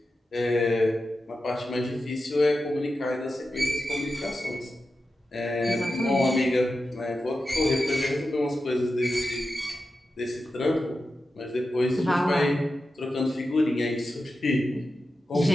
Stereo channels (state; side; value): normal; both; correlation 0.91